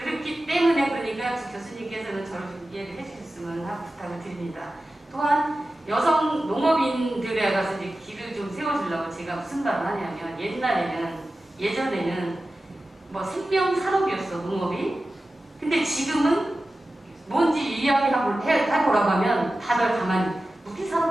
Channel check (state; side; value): normal; both; correlation 0.94